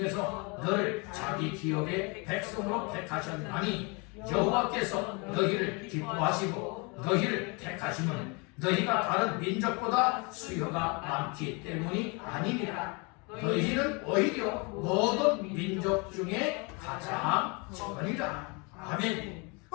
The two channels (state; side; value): quieter; right; 30.6 dB